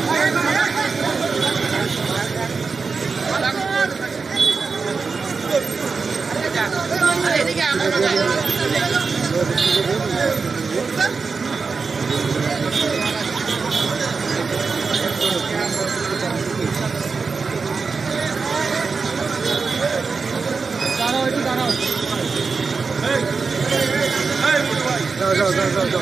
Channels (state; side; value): quieter; left; 4.7 dB